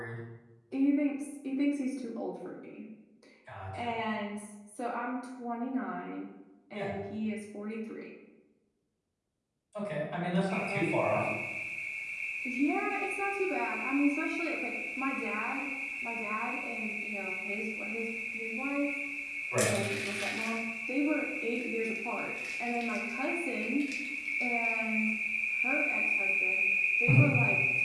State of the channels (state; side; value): identical; both; correlation 1.00